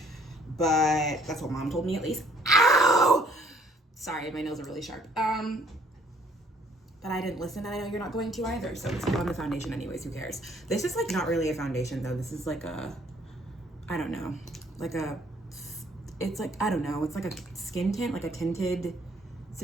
but that's what mom told me at least. Ow! Sorry, my nails are really sharp. But I didn't listen, and I know you're not going to either, so let's put on the foundation anyways, who cares? This is like not really a foundation though. This is like a, I don't know, like a, it's like, I don't know, it's like a skin tint, like a tinted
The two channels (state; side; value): normal; both; correlation 0.62